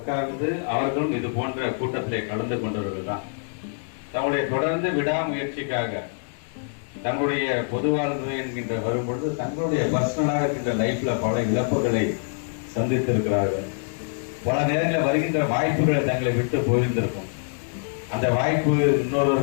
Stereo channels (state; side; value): silent; right; digital silence